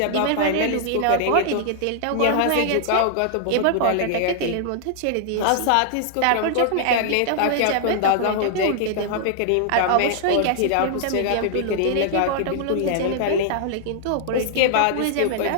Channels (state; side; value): different; both; correlation -0.01